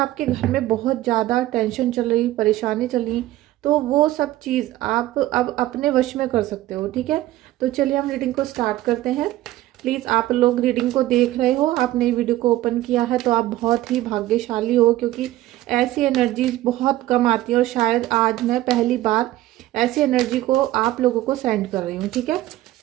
घर में बहुत ज़्यादा टेंशन चल रही, परेशानी चल रही, तो वो सब चीज़ आप अब अपने वश में कर सकते हो। ठीक है, तो चलिए हम रीडिंग को स्टार्ट करते हैं। प्लीज़, आप लोग रीडिंग को देख रहे हो, आपने वीडियो को ओपन किया है तो आप बहुत ही भाग्यशाली हो, क्योंकि ऐसी एनर्जीज बहुत कम आती है और शायद आज मैं पहली बार ऐसी एनर्जी को आप लोगों को सेंड कर रही हूँ। ठीक है,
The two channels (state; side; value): quieter; left; 15.6 dB